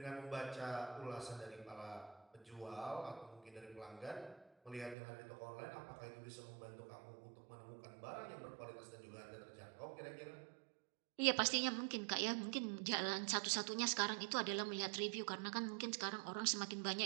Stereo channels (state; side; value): drops out; left; at 5.0 s